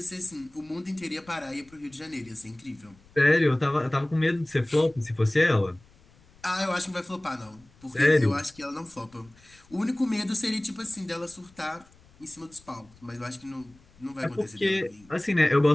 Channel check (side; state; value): left; noise; rumble, 28 dB below the sound